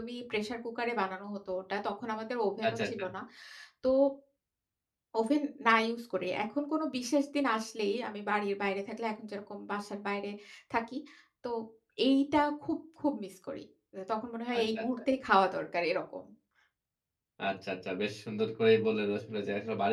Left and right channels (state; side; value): identical; both; correlation 1.00